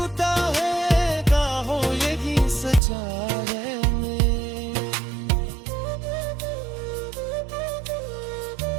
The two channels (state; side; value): drops out; left; at 2.8 s